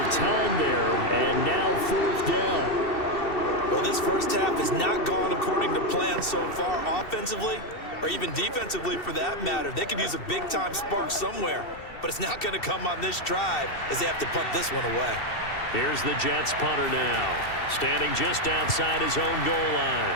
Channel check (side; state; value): right; late; 2.7 ms